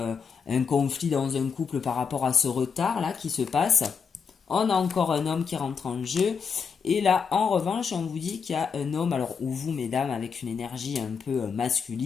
un conflit dans un couple par rapport à ce retard là qui se passe. On a encore un homme qui rentre en jeu. Et là, en revanche, on vous dit qu'il y a un homme, alors ou vous, mesdames, avec une énergie un peu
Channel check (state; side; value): quieter; right; 6.1 dB